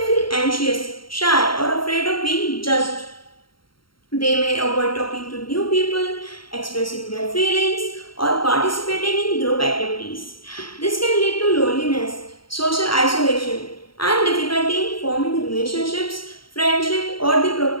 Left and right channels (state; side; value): late; right; 0.73 ms